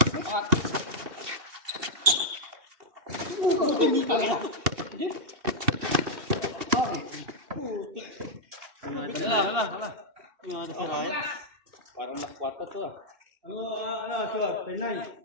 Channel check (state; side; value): late; left; 2.7 ms